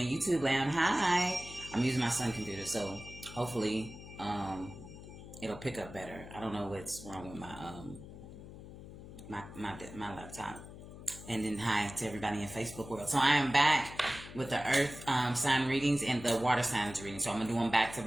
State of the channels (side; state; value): left; noise; hum, 14 dB below the sound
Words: YouTube land, hi. I'm using my son computer, so hopefully it'll pick up better. I don't know what's wrong with my laptop. And then hi to everybody in Facebook world. So I am back with the Earth sign readings and the water signs readings. So I'm gonna do them back to